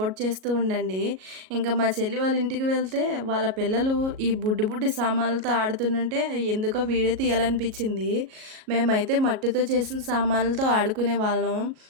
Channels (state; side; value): late; left; 37 ms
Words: చేస్తూ ఉండండి. ఇంకా మా చెల్లి వాళ్ళ ఇంటికి వెళ్తే వాళ్ళ పిల్లలు ఈ బుడ్డి బుడ్డి సామాన్లతో ఆడుతుంటే ఎందుకో వీడియో తీయాలనిపించింది. మేమైతే మట్టితో చేసిన సామాన్లతో ఆడుకునే వాళ్ళం.